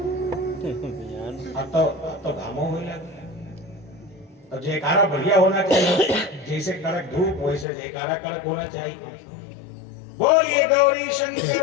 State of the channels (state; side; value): drops out; right; at 7.7 s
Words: अब तो घामो हो लगे। तो जयकारा बढ़िया होना चाहिए, जैसे कड़क धूप वैसे जयकारा कड़क होना चाहिए। बोलिए गौरी